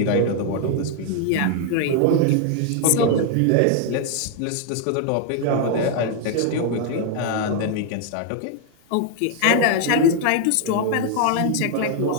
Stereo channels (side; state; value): both; different; correlation 0.00